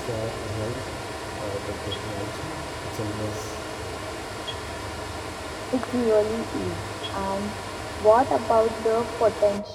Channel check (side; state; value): both; identical; correlation 1.00